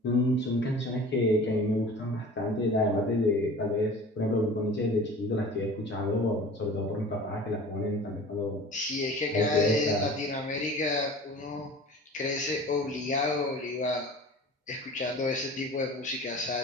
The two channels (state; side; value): normal; both; correlation 0.41